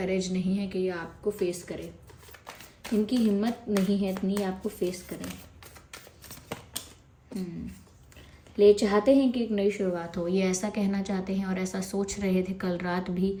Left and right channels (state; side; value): identical; both; correlation 1.00